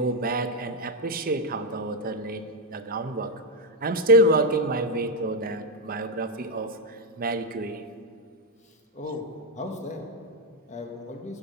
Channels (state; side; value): normal; both; correlation 0.04